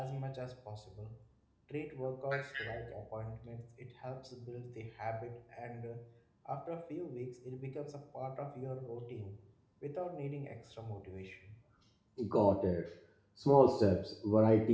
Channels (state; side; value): identical; both; correlation 1.00